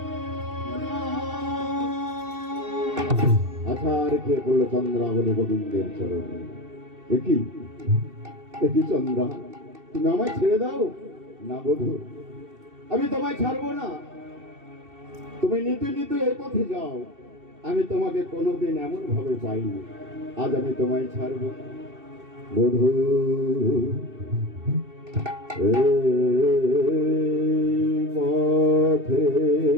আছার খেয়ে পড়লো চন্দ্রাবলী গোবিন্দের চরণে। একই একই চন্দ্রা, তুমি আমায় ছেড়ে দাও না বধূ, আমি তোমায় ছাড়বো না। তুমি নিতে নিতে এই পথে যাও, আমি তোমাকে কোনোদিন এমন ভাবে পাইনি, আজ আমি তোমায় ছাড়বো না বধূ। পথে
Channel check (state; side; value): late; left; 2.7 ms